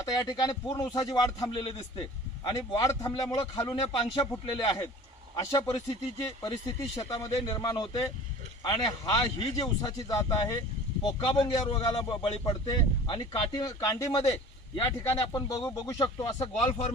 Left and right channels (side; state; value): both; normal; correlation 0.43